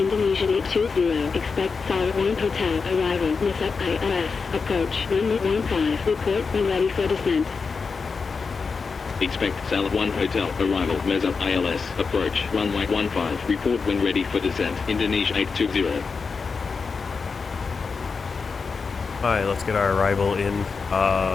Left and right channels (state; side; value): quieter; right; 4.9 dB